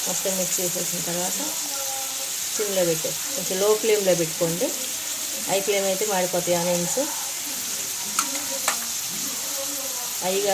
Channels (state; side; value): identical; both; correlation 1.00